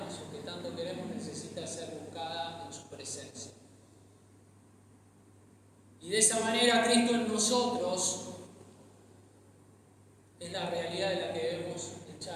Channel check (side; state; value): both; identical; correlation 1.00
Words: o que tanto queremos necesita ser buscada en su presencia. Y de esa manera Cristo en nosotros es la realidad de la que debemos